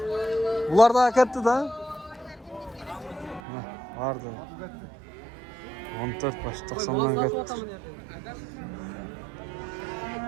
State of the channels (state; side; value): drops out; left; at 3.4 s